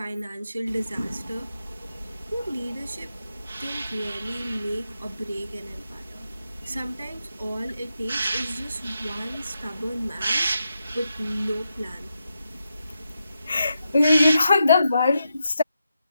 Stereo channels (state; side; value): inverted; both; correlation -0.86